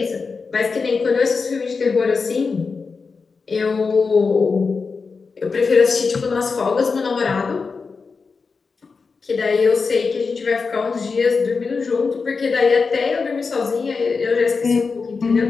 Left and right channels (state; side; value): quieter; right; 4.8 dB